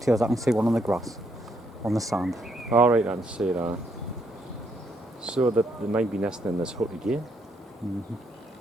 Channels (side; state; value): both; normal; correlation 0.74